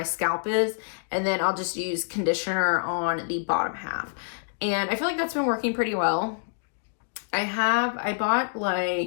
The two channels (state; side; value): silent; right; digital silence